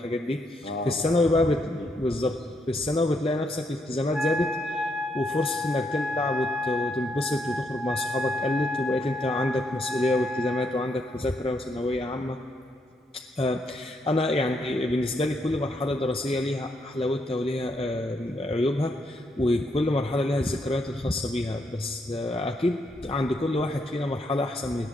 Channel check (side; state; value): both; normal; correlation 0.76